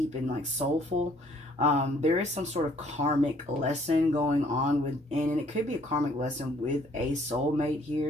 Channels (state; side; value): normal; both; correlation 0.61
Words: and like soulful. There is some sort of karmic lesson going on within, and it could be a karmic lesson with a soulmate